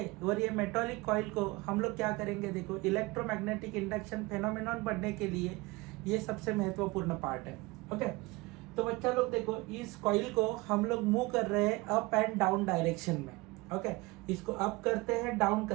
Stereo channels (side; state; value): left; quieter; 22.9 dB